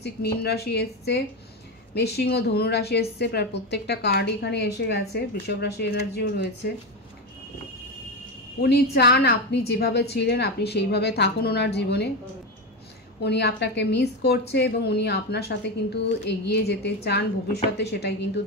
মীন রাশি এসছে, মেষসিংহ, ধনু রাশি এসছে। প্রায় প্রত্যেকটা কার্ড এখানে এসে গেছে। বৃষভ রাশি এনার্জিও রয়েছে। উনি চান আপনি যেভাবে ছিলেন আপনি সেইভাবে থাকুন ওনার জীবনে। উনি আপনাকে মিস করছে এবং উনি আপনার সাথে কিন্তু এগিয়ে যেতে চান ভবিষ্যতে, সেটাই কিন্তু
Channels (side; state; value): both; normal; correlation 0.15